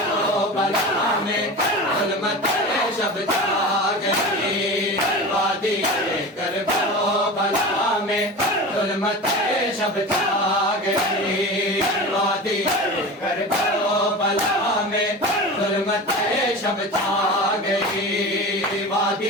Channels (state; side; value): normal; both; correlation 0.30